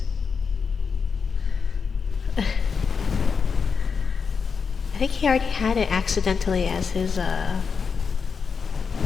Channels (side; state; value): right; quieter; 5.7 dB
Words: I think he already had it accidentally as his,